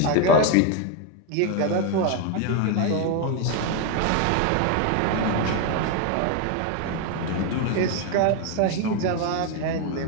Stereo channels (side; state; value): both; different; correlation 0.01